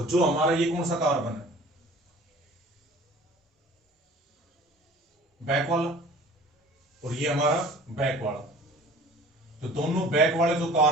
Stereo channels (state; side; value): normal; both; correlation 0.46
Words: जो हमारा ये कौन सा कार्बन है, बैक वाला, और ये हमारा बैक वाला, तो दोनों बैक वाले जो